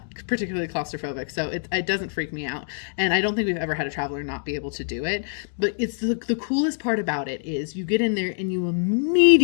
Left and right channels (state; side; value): silent; right; digital silence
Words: particularly claustrophobic, so it doesn't freak me out. And I don't think we've ever had a traveler not be able to do it. But it's the coolest part about it is you get in there and you